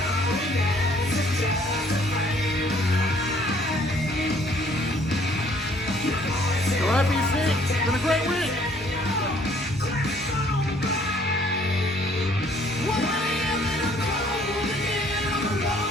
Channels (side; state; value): both; normal; correlation 0.61